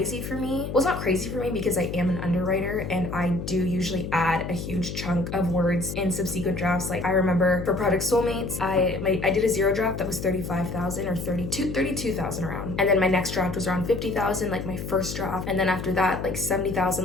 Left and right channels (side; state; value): left; noise; hum, 7 dB below the sound